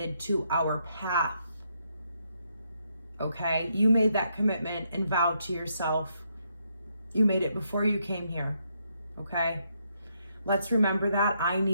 to our path. Okay? You made that commitment and vow to yourself. You made it before you came here. Okay? Let's remember that. I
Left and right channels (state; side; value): inverted; both; correlation -0.77